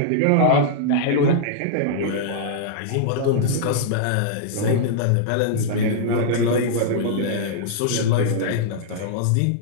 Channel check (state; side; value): different; both; correlation -0.02